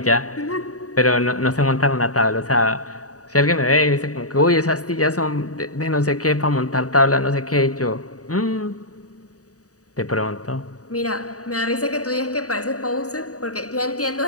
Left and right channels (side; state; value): right; late; 0.66 ms